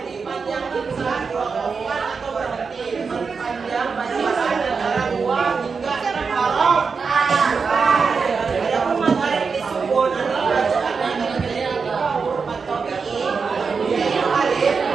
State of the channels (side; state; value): left; quieter; 5.2 dB